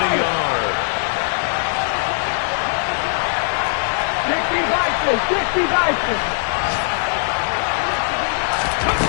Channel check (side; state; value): right; silent; digital silence